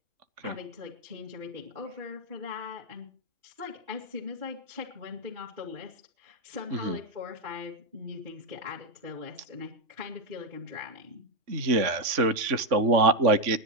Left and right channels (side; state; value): left; late; 3.5 ms